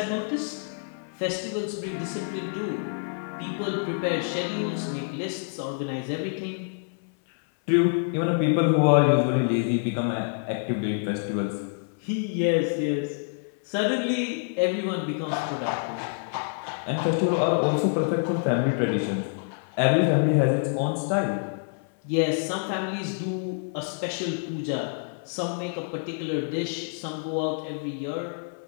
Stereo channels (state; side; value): silent; right; 60 dB below the other